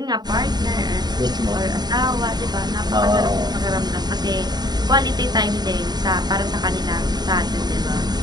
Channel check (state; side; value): late; left; 0.20 ms